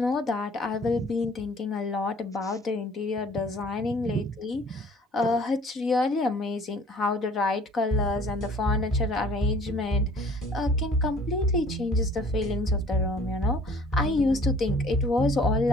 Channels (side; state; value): both; normal; correlation 0.53